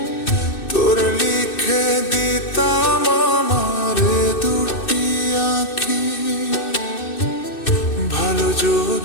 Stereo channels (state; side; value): late; right; 2.6 ms